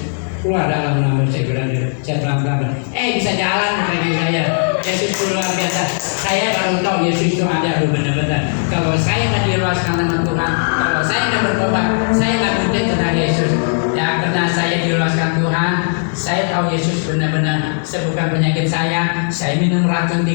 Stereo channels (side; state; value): right; silent; 68 dB below the other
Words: keluar dalam nama saya pelan-pelan. Bisa jalan kaki saya. Yesus itu luar biasa. Saya baru tahu Yesus itu ada benar-benar. Kalau saya nggak diluaskan nama Tuhan, kalau saya nggak bertobat, saya nggak mungkin kenal Yesus. Ya karena saya diluaskan Tuhan, saya tahu Yesus benar-benar sembuhkan penyakit saya. Saya minum racun